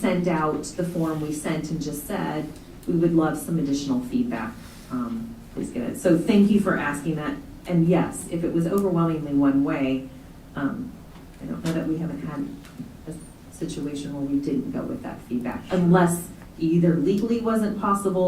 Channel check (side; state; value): both; identical; correlation 1.00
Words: out the form we sent and just said, we would love some additional feedback. Please get it. So thank you for asking that. And yes, if it was overwhelmingly one way, I don't know that we haven't had a situation where we didn't go with that feedback, unless either legally wasn't